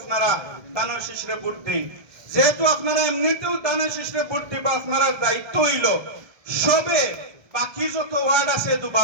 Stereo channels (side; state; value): left; late; 1.2 ms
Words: দানর শিশরে ভোট দেন। যেহেতু আপনারা এমনিতেও দানর শিশরে ভোট দিবা, আপনারা দায়িত্ব হইল সবে বাকি যত ওয়ার্ড আছে